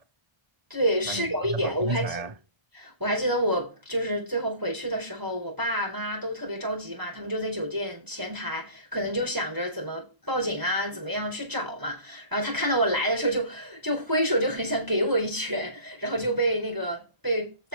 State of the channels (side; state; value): left; late; 1.0 ms